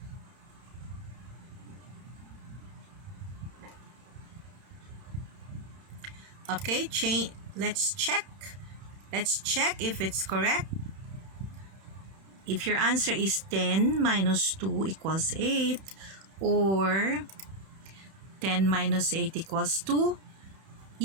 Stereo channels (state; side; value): late; left; 31 ms